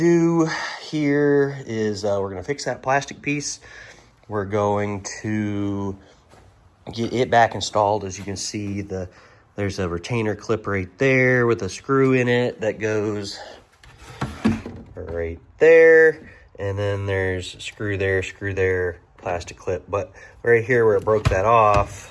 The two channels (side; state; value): both; identical; correlation 1.00